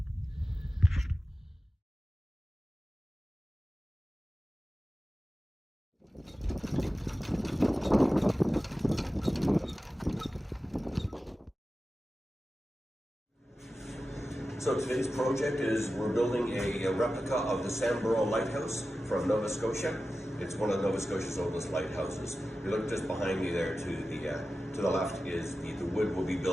So today's project is we're building a replica of the Sambro Lighthouse from Nova Scotia. It's one of Nova Scotia's oldest lighthouses. You look just behind me there to the left is the wood we'll be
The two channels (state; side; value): normal; both; correlation 0.94